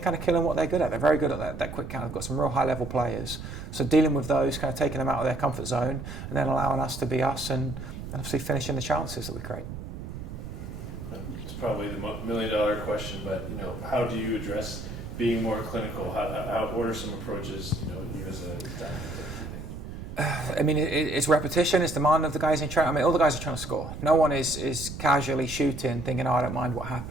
of killing what they're good at. They're very good at that quick counter. They've got some real high level players. So dealing with those, kind of taking them out of their comfort zone, and then allowing us to be us, and obviously finishing the chances that we create. It's probably the $1 million question, but how do you address being more clinical? What are some approaches you as a staff? I mean, it's repetition, it's demand of the guys in training. I mean, all the guys are trying to score. No one is casually shooting, thinking, I don't mind what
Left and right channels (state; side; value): noise; right; rumble, 9 dB below the sound